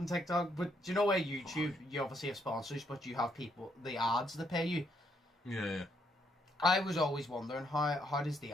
TikTok. But do you know where YouTube, you obviously have sponsors, but you have people, the ads that pay you. Yeah. I was always wondering how does the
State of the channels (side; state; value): both; normal; correlation 0.73